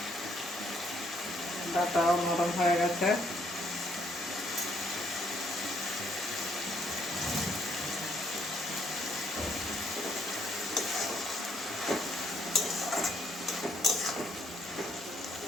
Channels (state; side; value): normal; both; correlation 0.69